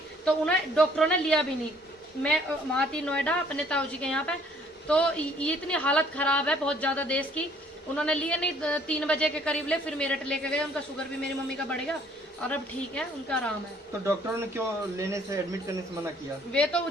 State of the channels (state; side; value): normal; both; correlation 0.60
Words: तो उन्हें डॉक्टरों ने लिया भी नहीं। मैं वहाँ थी नोएडा अपने ताऊ जी के यहाँ पे, तो ये इतनी हालत खराब है बहुत ज़्यादा देश की, उन्होंने लिए नहीं। 3 बजे के करीब ले, फिर मेरठ लेके गए, उनका शुगर भी मेरी मम्मी का बढ़ गया और अब ठीक है, उनका आराम है। तो डॉक्टरों ने क्यों लेने से, एडमिट करने से मना किया? वे तो